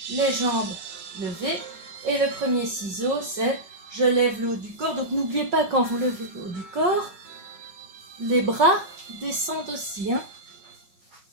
les jambes levées et le premier ciseau c'est je lève le haut du corps. Donc n'oubliez pas quand vous levez le haut du corps, les bras descendent aussi.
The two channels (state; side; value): late; left; 5.4 ms